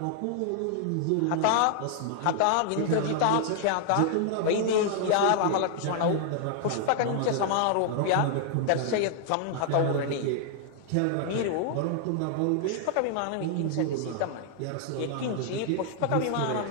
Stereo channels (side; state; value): both; different; correlation 0.00